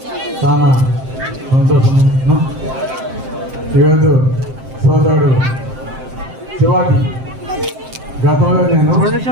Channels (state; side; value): late; left; 7.6 ms